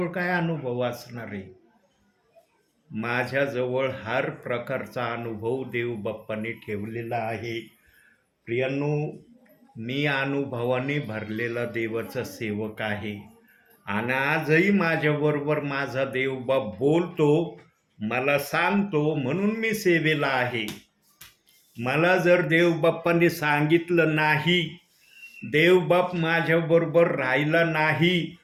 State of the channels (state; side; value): identical; both; correlation 1.00